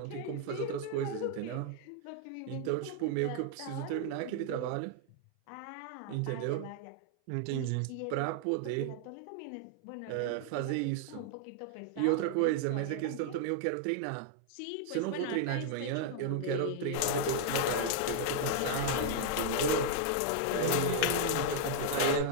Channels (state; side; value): different; both; correlation -0.01